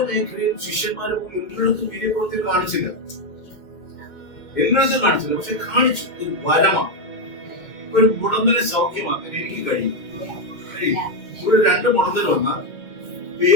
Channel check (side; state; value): right; late; 2.1 ms